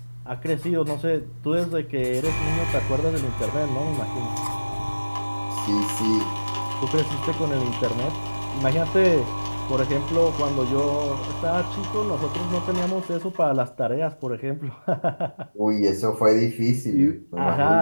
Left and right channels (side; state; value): both; inverted; correlation -1.00